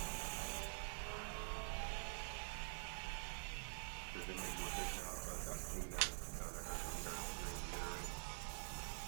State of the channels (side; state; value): left; silent; digital silence